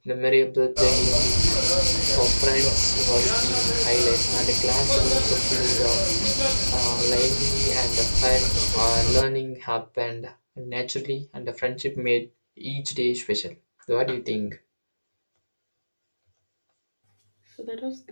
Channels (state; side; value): inverted; both; correlation -1.00